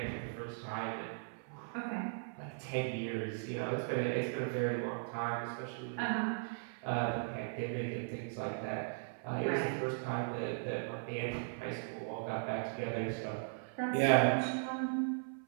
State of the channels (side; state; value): left; silent; 52 dB below the other